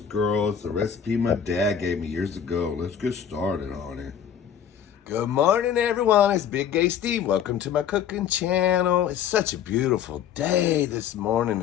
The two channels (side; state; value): right; quieter; 8.5 dB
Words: The recipe my dad gave me years ago. Let's get started on it. Good morning, everyone. It's Big Gay Steve. Welcome to my cooking channel. It's such a beautiful day this morning.